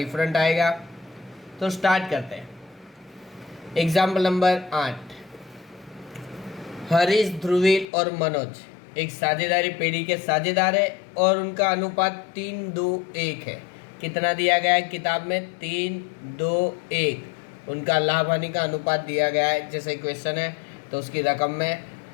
आएगा। तो स्टार्ट करते हैं। Example number 8। हरीश, ध्रुवील और मनोज एक साझेदारी पेढ़ी के साझेदार है और उनका अनुपात 3-2-1 है। कितना दिया गया है किताब में? 3-2-1 उनका लाभ हानि का अनुपात दिया गया है, जैसे क्वेश्चन है। तो उसकी रकम में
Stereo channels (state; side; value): drops out; right; at 7.9 s